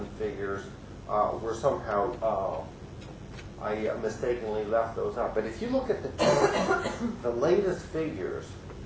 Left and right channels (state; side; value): identical; both; correlation 1.00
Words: figures were somehow, I mistakenly left those out. But if you look at the latest figures